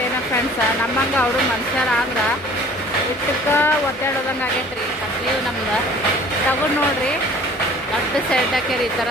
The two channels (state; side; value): normal; both; correlation 0.49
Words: ಏನೋ ಫ್ರೆಂಡ್ಸ. ನಮ್ಮಂಗೆ ಅವರು ಮನುಷ್ಯರ ಆದ್ರೆ ಇಷ್ಟಕ್ಕೆ ಒದ್ದಾಡೋದಂಗೆ ಆಗೈತೆ ರೀ. ಕತ್ಲೀವು ನಮ್ದು ತಗೊಂಡು ನೋಡ್ರಿ. ದೊಡ್ಡ ಸೈಡ್ ಹಾಕ್ಯಾರ ಈ ಥರ